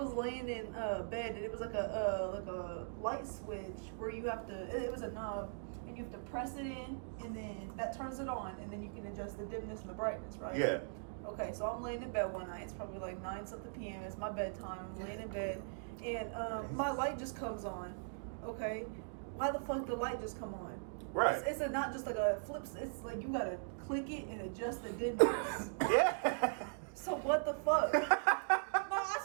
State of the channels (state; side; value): silent; left; digital silence